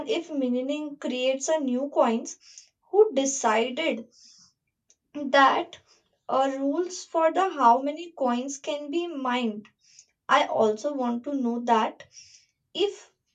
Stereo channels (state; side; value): identical; both; correlation 1.00